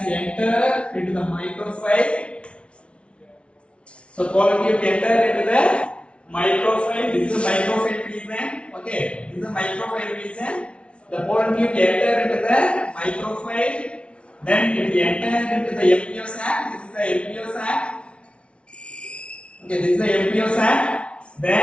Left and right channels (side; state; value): right; late; 0.060 ms